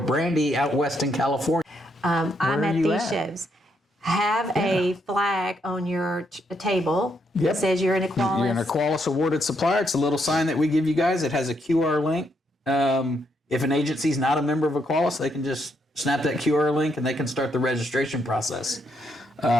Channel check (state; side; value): normal; both; correlation 0.76